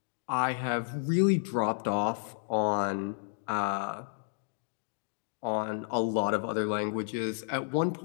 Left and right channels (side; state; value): right; silent; digital silence